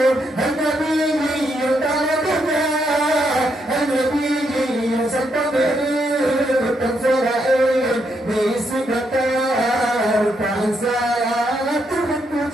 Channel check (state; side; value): normal; both; correlation 0.78